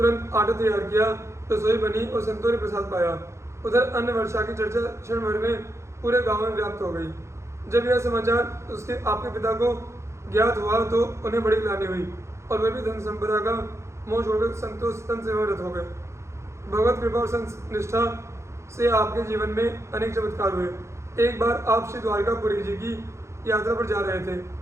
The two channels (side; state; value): left; late; 0.14 ms